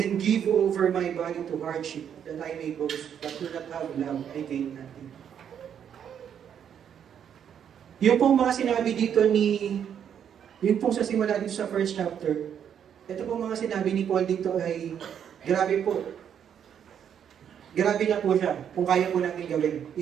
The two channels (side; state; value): left; quieter; 8.6 dB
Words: give over my body to hardship, that I may boast, but do not have love, I gain nothing. Yung pong mga sinabi dito yung pong sa simula dito sa first chapter, ito pong mga sinabi ni Paul dito ay, grabe po. Grabe na po siya, kung kaya po natin gawin.